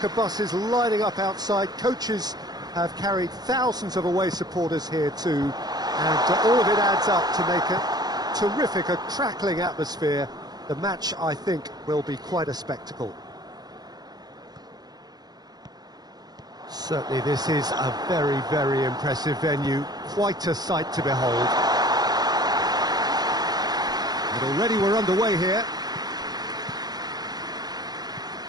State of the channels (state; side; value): late; left; 0.19 ms